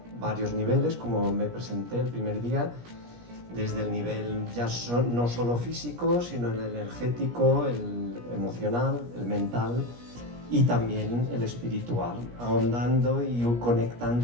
varios niveles, como me presenté el primer día, desde el nivel ya no solo físico, sino el energético, el emocional, el mental y también el espiritual, ahondando y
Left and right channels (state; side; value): late; left; 17 ms